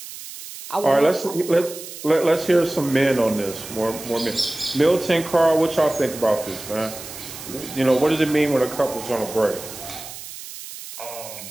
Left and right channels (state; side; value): noise; right; hiss, 13 dB below the sound